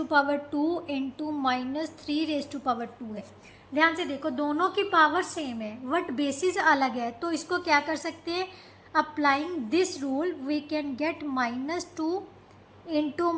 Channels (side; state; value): both; identical; correlation 1.00